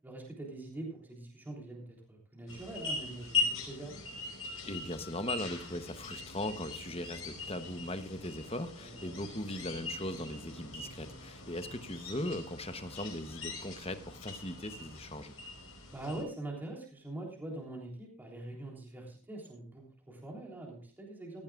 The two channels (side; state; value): both; normal; correlation 0.36